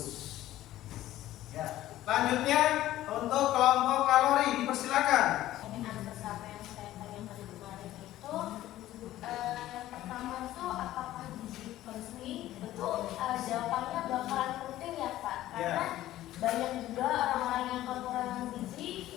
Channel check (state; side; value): quieter; right; 14.5 dB